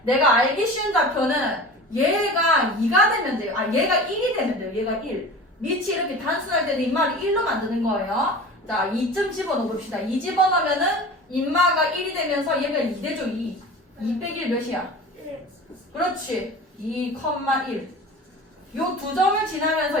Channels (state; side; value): normal; both; correlation 0.36